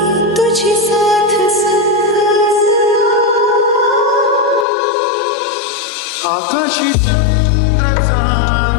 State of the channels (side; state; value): right; drops out; at 4.7 s